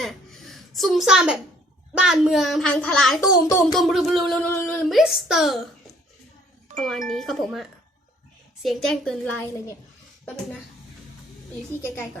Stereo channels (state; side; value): normal; both; correlation 0.60